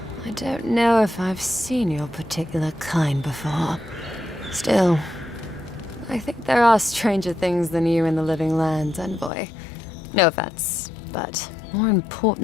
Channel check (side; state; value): right; drops out; at 9.3 s